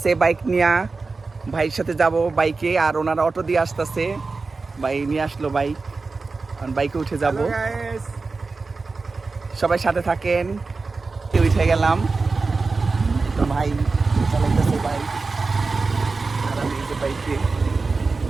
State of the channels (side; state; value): left; quieter; 4.1 dB